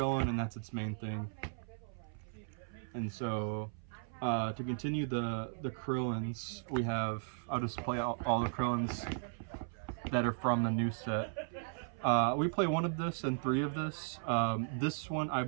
and that's its main thing. And so to continue the Krillins, we have, I'll just play out all the Krillins that are from the new set. We play 1 of this and 3 of this. This one, I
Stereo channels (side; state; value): left; silent; 53 dB below the other